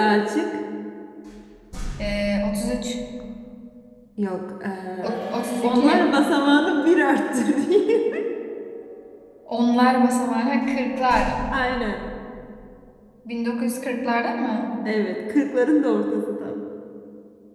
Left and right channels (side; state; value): both; identical; correlation 1.00